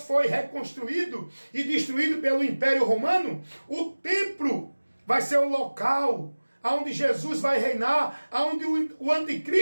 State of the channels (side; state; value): both; inverted; correlation -1.00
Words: foi reconstruído e destruído pelo Império Romano, o templo vai ser o local onde Jesus vai reinar, onde o